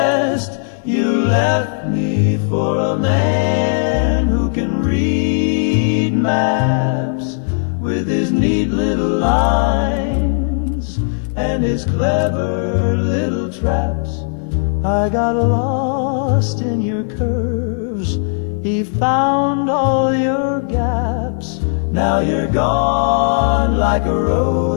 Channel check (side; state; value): right; silent; digital silence